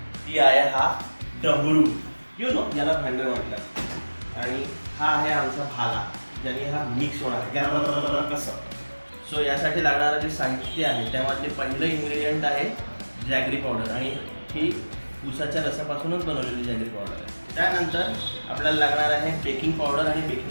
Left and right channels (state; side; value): inverted; both; correlation -1.00